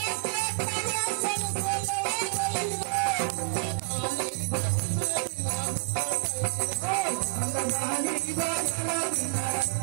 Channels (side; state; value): left; silent; 59 dB below the other